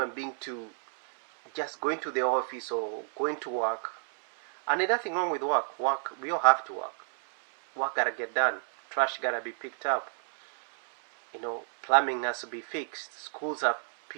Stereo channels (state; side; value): silent; left; digital silence